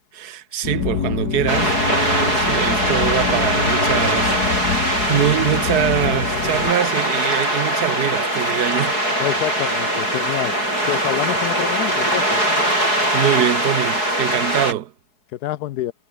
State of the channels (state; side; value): late; right; 4.7 ms